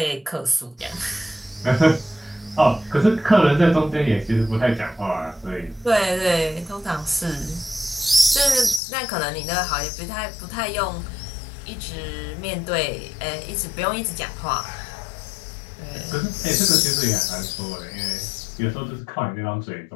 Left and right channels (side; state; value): right; drops out; at 8.8 s